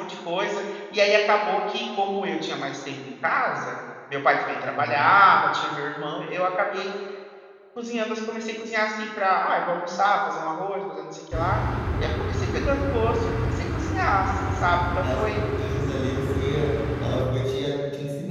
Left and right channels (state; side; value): identical; both; correlation 1.00